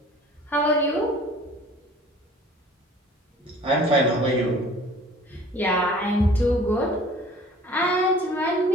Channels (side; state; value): both; normal; correlation 0.49